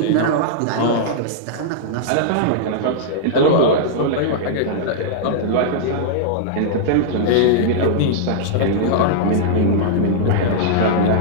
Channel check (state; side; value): different; both; correlation -0.02